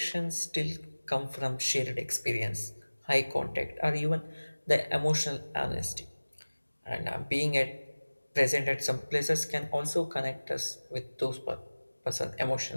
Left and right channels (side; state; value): both; inverted; correlation -1.00